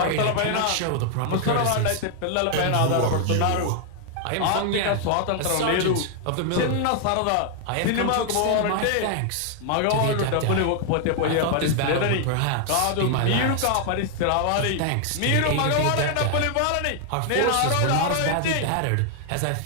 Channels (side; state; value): both; different; correlation 0.00